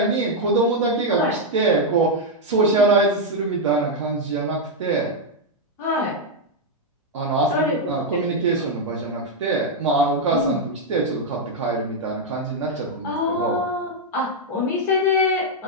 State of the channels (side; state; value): both; normal; correlation -0.01